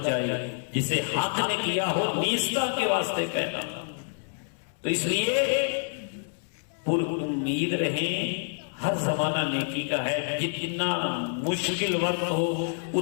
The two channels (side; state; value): right; silent; 60 dB below the other